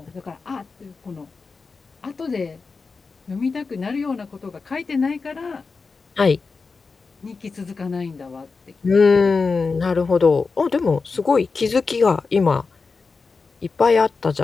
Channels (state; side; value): quieter; right; 4.5 dB